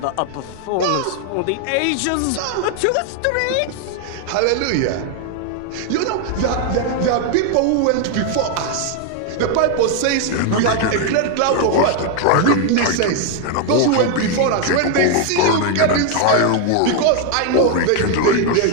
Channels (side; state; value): both; different; correlation 0.01